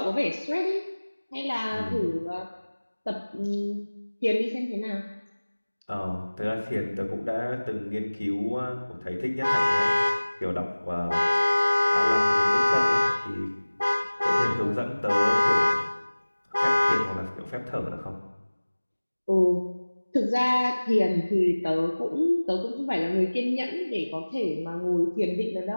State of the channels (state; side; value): inverted; both; correlation -1.00